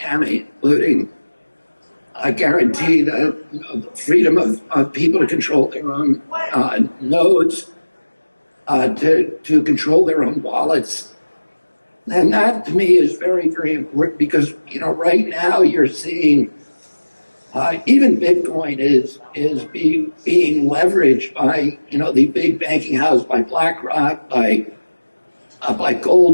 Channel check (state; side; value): inverted; both; correlation -1.00